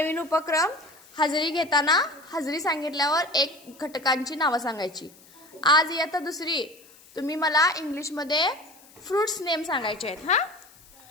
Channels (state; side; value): noise; left; hiss, 25 dB below the sound